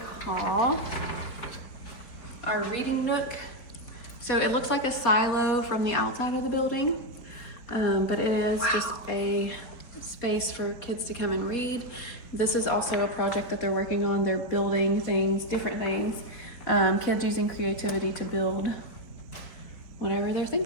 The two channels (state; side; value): late; right; 4.4 ms